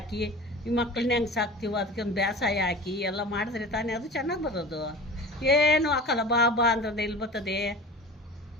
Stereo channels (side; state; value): both; normal; correlation 0.36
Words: ಈ ಮಕ್ಕಳನ್ನ ಹೆಂಗೆ ಸಾಕ್ತೀವೋ ಅದಕ್ಕೆ ಒಂದು ಬೇಸಾಯ ಹಾಕಿ ಎಲ್ಲ ಮಾಡಿದ್ರೆ ತಾನೇ ಅದು ಚೆನ್ನಾಗಿ ಬರೋದು. ಏನು ಹಾಕಲ್ಲ, ಬಾ ಬಾ ಅಂದ್ರೆ ಎಲ್ಲಿ ಬರ್ತದೆ?